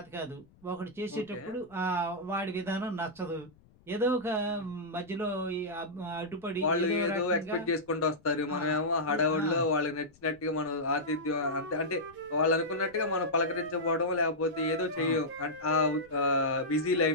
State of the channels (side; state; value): left; noise; rumble, 29 dB below the sound